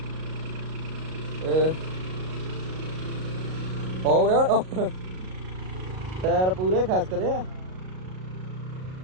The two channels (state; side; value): late; left; 38 ms